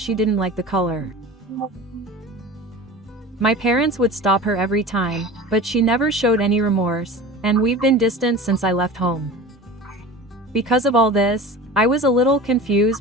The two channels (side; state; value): both; normal; correlation 0.36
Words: didn't like the color. My parents would stop her every time, but she never showed any remorse, and we've been distant since I left home. Because of all this, I was a little